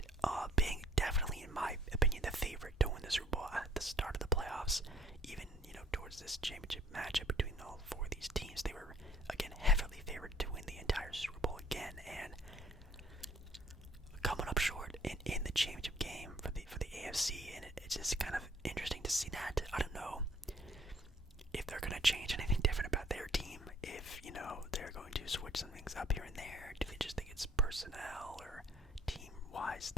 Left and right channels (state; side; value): normal; both; correlation 0.59